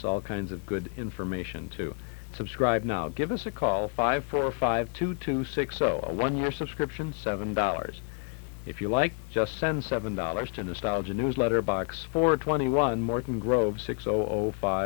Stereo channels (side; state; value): right; quieter; 39.1 dB